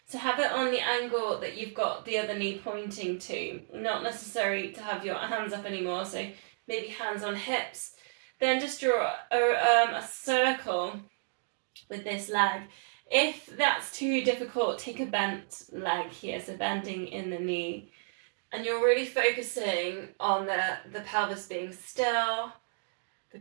So have it on the angle that you've got the other knee pointing to. Not necessary to have your hands up anymore, so maybe hands on hips. Then just draw a circle with this leg. If that's too difficult, take a bent leg here, so bending in the knee. And you're really focusing on the pelvis being still, the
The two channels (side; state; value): left; silent; digital silence